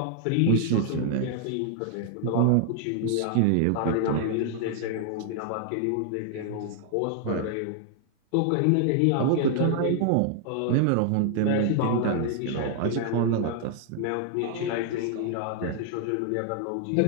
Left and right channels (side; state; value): both; different; correlation 0.00